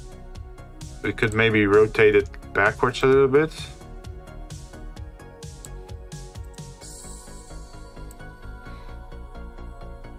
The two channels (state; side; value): identical; both; correlation 1.00